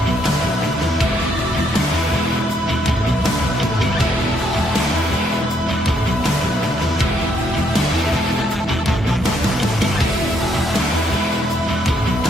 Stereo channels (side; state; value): both; normal; correlation 0.72